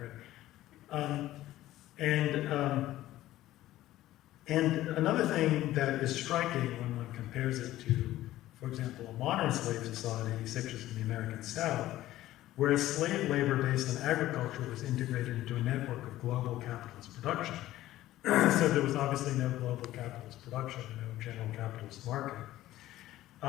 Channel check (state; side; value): quieter; right; 15.0 dB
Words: And another thing that is striking when one compares it to, for example, a modern slave society, such as in the American South, where slave labor based on agriculture was integrated into a network of global capitalist production. So there was obviously no global capitalist production, no general capitalist market.